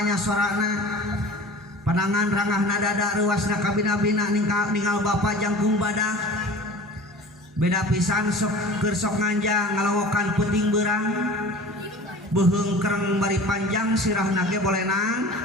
sorana panangan rangahna dada ruasna kabina-bina ningal bapak jangkung badak. Beda pisan sok keur sok nganjang ngalowokan puting beurang beheung kereng bari panjang sirahna ge bolenang.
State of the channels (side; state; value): both; normal; correlation 0.40